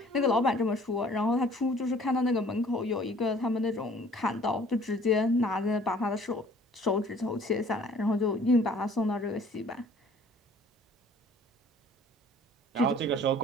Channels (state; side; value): normal; both; correlation 0.53